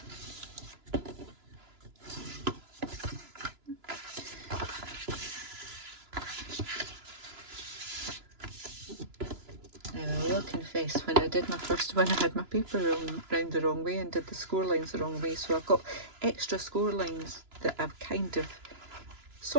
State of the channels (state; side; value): late; left; 2.9 ms